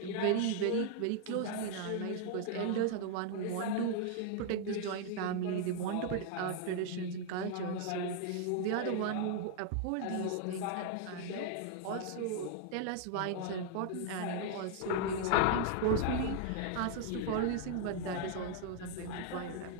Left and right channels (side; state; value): both; different; correlation 0.00